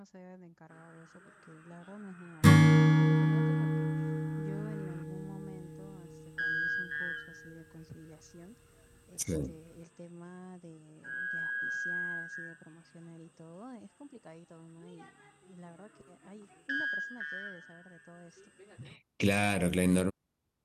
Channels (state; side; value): identical; both; correlation 1.00